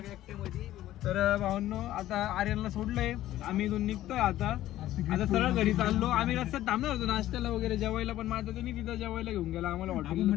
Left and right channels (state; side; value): quieter; right; 14.1 dB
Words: तर भावांनो आता आर्यनला सोडलंय आम्ही इथून निघतोय आता सरळ घरी चाललो. आम्ही रस्त्यात थांबणार होतो नाश्त्याला वगैरे जेवायला पण माझं त्यांनी तिथं जेवायला घेऊन गेला आम्हाला हॉटेल.